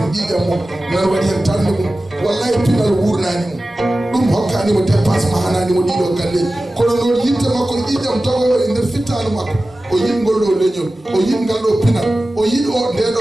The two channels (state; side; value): normal; both; correlation 0.96